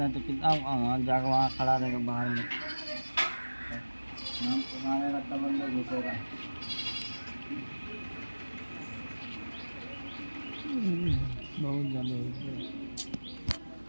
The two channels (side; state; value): both; inverted; correlation -1.00